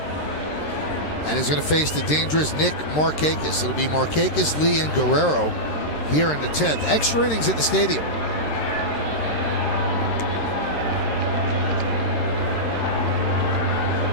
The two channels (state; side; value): late; right; 13 ms